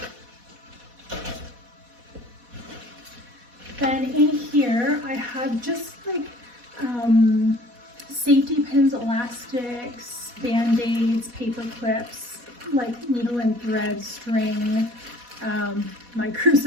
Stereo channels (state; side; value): late; left; 4.1 ms